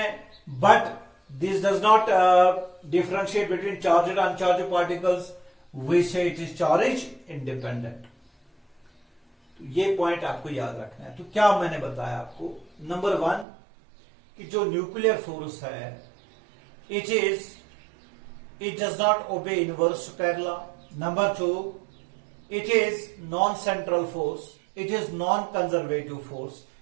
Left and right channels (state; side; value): drops out; left; at 13.5 s